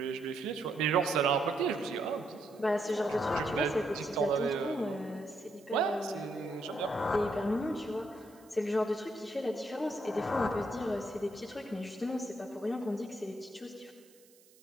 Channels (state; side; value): noise; right; hiss, 27 dB below the sound